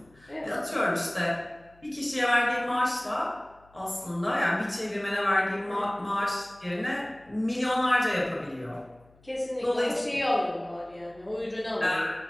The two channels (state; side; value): noise; left; hum, 29 dB below the sound